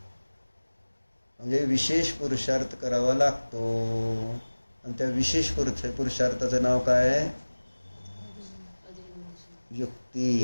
म्हणजे विशेष पुरुषार्थ करावा लागतो. आणि त्या विशेष पुरुषार्थाचं नाव काय आहे?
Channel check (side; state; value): both; inverted; correlation -1.00